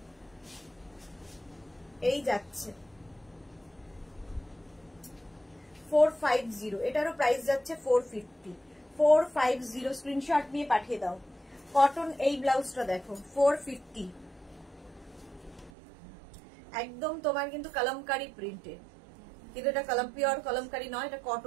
এই যাচ্ছে 450, এটারও প্রাইস যাচ্ছে 450, 450 স্ক্রিনশট নিয়ে পাঠিয়ে দাও। কটন এই ব্লাউজটা দেখো 450, একদম তোমার কিন্তু কলমকারি প্রিন্টে, কিন্তু এটা পিওর কলমকারি নয়, এটা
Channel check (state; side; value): drops out; left; at 15.7 s